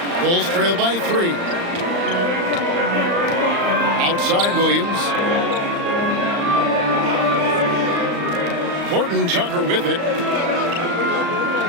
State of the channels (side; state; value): left; late; 35 ms